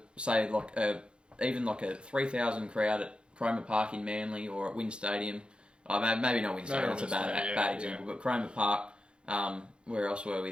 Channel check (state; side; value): late; left; 0.054 ms